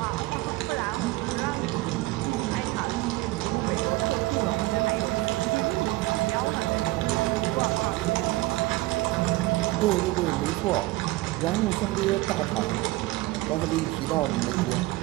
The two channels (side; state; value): left; quieter; 19.6 dB